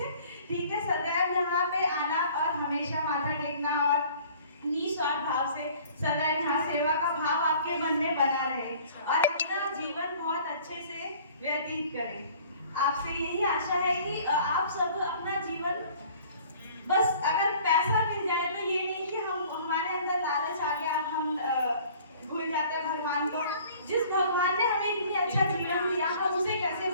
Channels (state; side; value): inverted; both; correlation -0.51